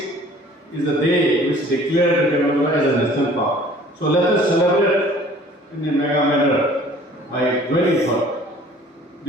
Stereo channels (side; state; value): both; normal; correlation 0.51